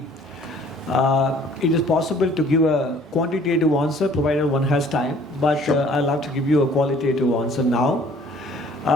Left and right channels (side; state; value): both; normal; correlation 0.55